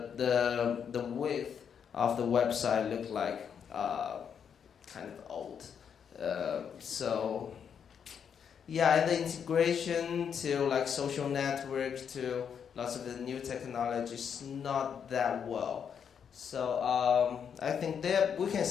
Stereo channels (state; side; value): quieter; right; 7.5 dB